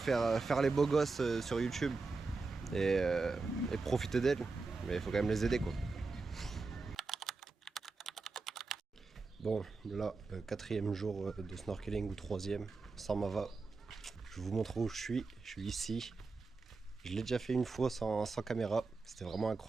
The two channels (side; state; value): left; quieter; 4.0 dB